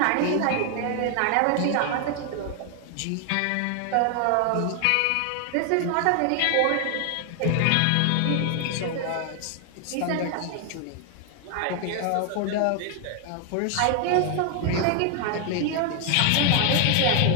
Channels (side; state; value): both; different; correlation 0.00